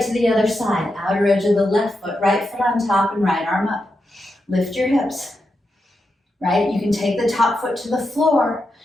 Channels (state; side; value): normal; both; correlation 0.86